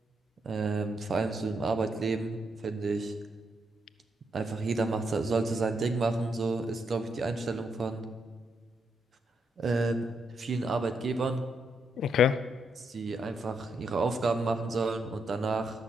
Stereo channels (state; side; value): normal; both; correlation 0.79